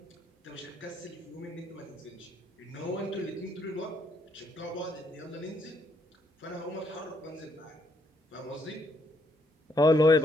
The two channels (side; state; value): both; normal; correlation 0.73